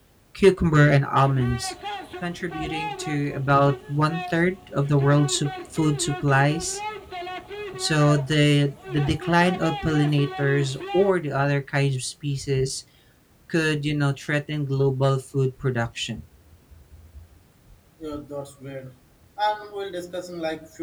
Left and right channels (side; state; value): both; identical; correlation 1.00